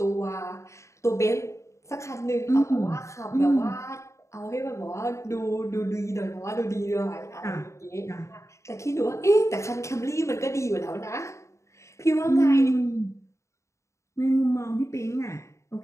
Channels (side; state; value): right; late; 0.14 ms